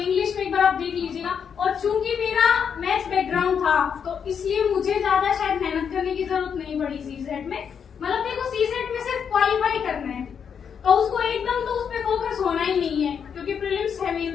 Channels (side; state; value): right; quieter; 7.2 dB